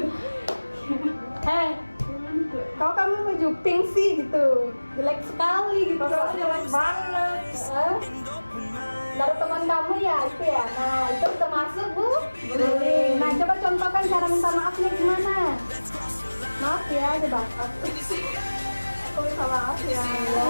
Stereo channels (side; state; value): both; inverted; correlation -1.00